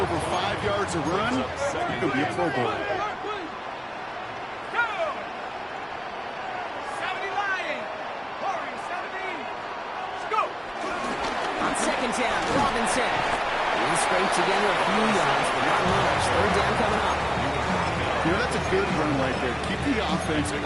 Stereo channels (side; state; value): both; identical; correlation 1.00